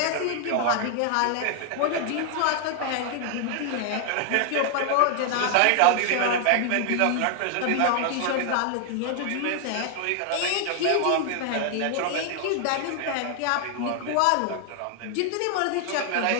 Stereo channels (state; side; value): different; both; correlation 0.00